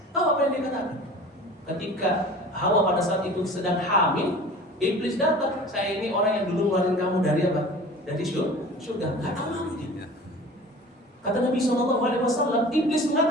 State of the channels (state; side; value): normal; both; correlation 0.41